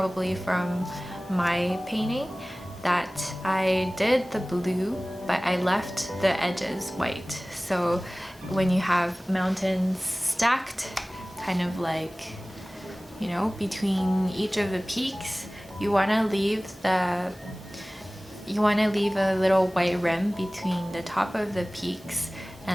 from my painting, that I did the blue, but I left the edges white. So when you have mountains stacked, kind of like, you know, between each of the peaks, you want to leave a little white rim between the top of the peaks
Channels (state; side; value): normal; both; correlation 0.98